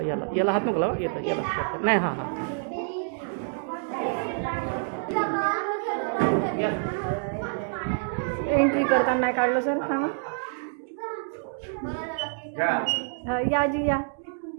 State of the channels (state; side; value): silent; left; digital silence